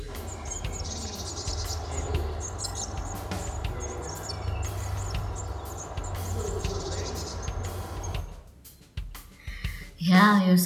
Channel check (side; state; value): both; identical; correlation 1.00